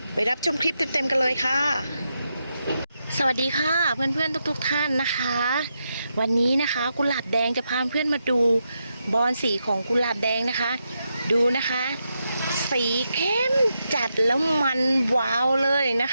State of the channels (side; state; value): both; inverted; correlation -0.85